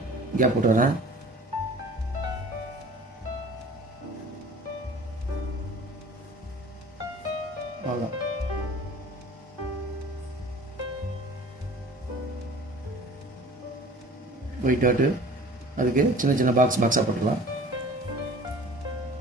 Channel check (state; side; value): normal; both; correlation 0.46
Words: கேப் போட்டு வரேன். அவ்வளோதான். ஒயிட் டாட்டு அதுக்கு சின்ன சின்ன பாக்ஸாக போட்டுக்கலாம்.